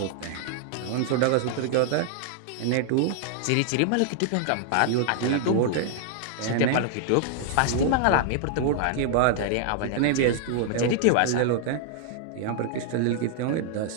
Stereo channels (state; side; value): different; both; correlation 0.00